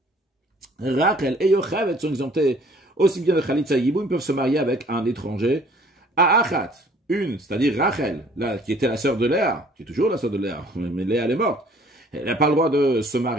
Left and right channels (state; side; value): normal; both; correlation 0.56